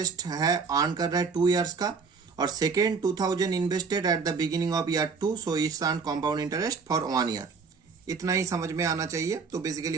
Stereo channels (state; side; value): quieter; left; 5.1 dB